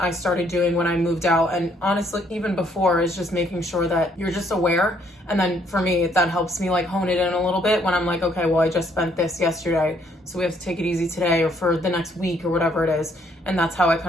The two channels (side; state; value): both; normal; correlation 0.67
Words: I started doing when I moved out. And honestly, even before, is just making sure that you're just aware. And then for me, that helps me like hone it in a little bit when I'm like, okay, well, I just spent this yesterday, so we have to take it easy today or for the next week or whatever it is. And that's how I